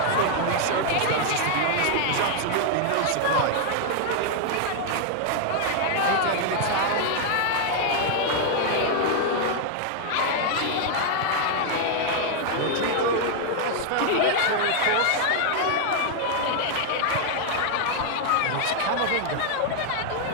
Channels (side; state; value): both; different; correlation 0.00